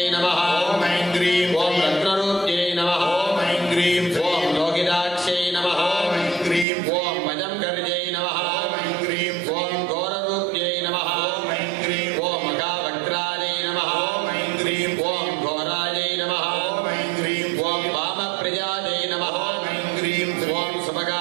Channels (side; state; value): left; drops out; at 6.7 s